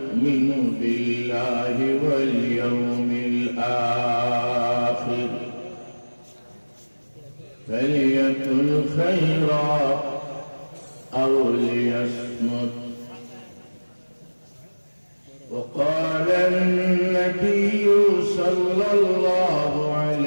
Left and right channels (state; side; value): inverted; both; correlation -1.00